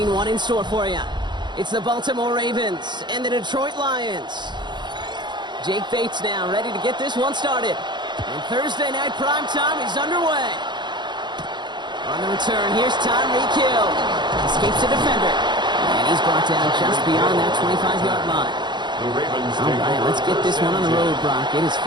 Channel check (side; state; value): left; late; 0.22 ms